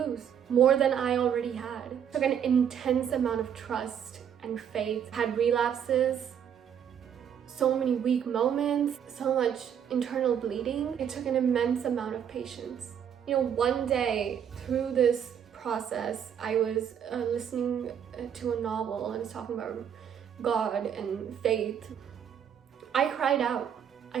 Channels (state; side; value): quieter; left; 8.6 dB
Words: more than I already had. It took an intense amount of trust and faith. I had relapses, so many weak moments, so much internal bleeding. It took an immense amount of patience. You know, one day through this process, I was listening to a novel and it's talking about God and faith. I cried out.